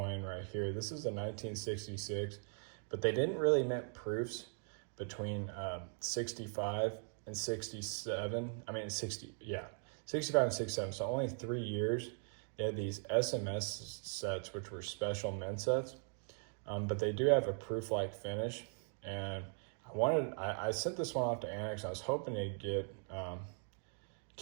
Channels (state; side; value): silent; left; 51 dB below the other